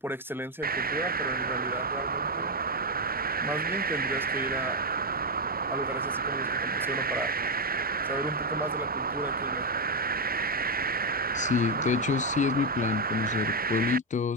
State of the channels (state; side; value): normal; both; correlation 0.05